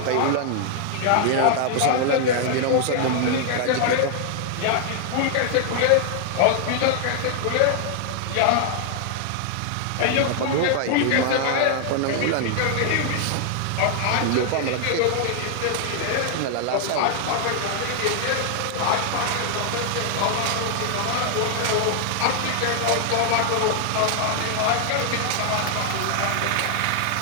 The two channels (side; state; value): both; different; correlation 0.00